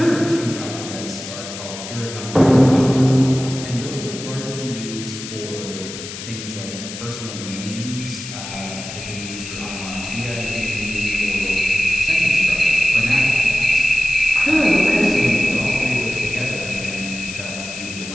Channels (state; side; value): noise; left; hiss, 10 dB below the sound